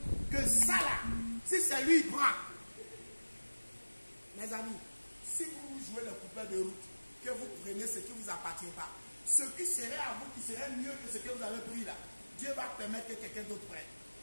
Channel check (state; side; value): inverted; both; correlation -1.00